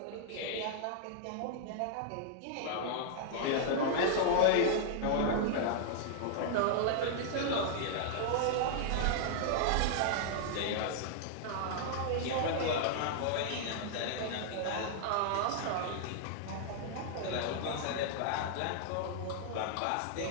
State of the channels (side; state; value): both; different; correlation -0.01